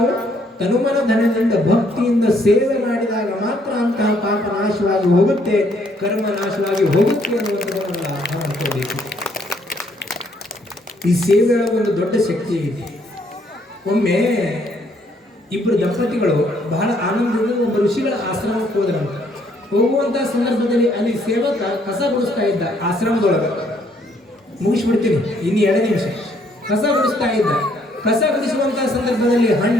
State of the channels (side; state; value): both; normal; correlation 0.68